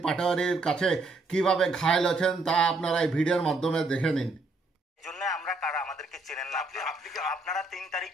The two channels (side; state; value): left; quieter; 3.2 dB